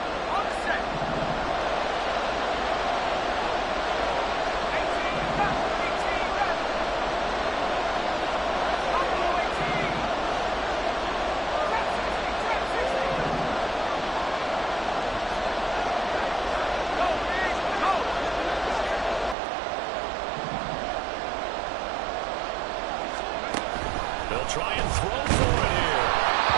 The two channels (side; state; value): left; drops out; at 19.4 s